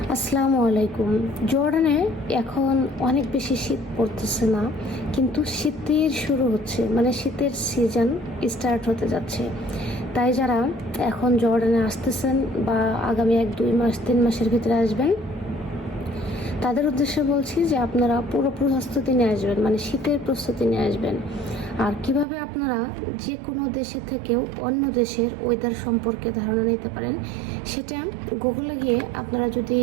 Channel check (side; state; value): left; drops out; at 22.2 s